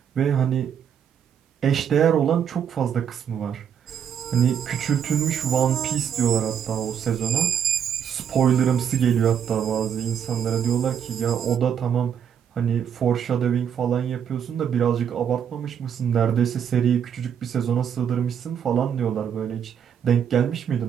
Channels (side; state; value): left; quieter; 8.3 dB